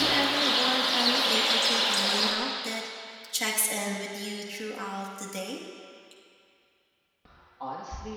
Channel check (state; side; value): identical; both; correlation 1.00